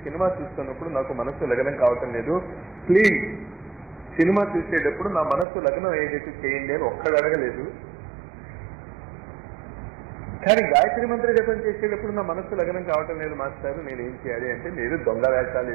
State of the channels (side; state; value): left; drops out; at 5.5 s